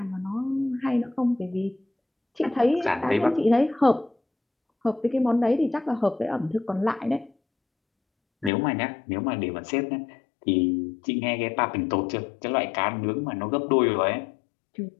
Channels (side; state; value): right; drops out; at 8.5 s